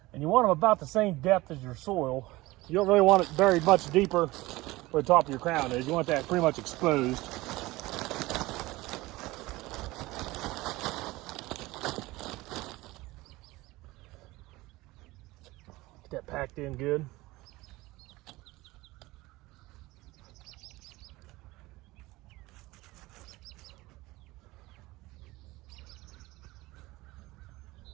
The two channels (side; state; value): left; quieter; 20.0 dB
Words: And you want them about the same depth as your soil. You don't really want it very much deeper where the top of your crown is. You want that pretty much exposed. Get that packed in good.